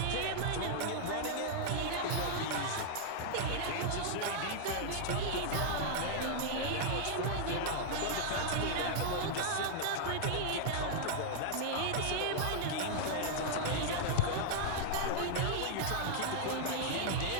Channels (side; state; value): both; different; correlation -0.01